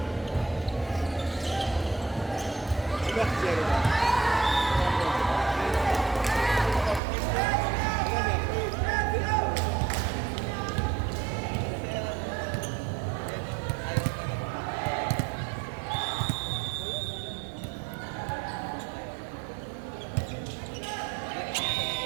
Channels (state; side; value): drops out; left; at 7.0 s